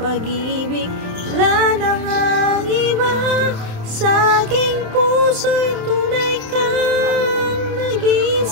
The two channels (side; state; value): left; late; 27 ms